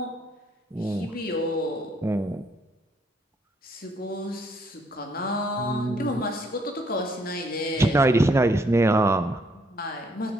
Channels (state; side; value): normal; both; correlation 0.69